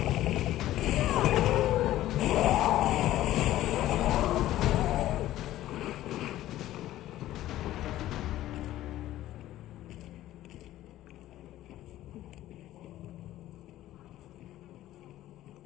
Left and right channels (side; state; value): right; quieter; 14.3 dB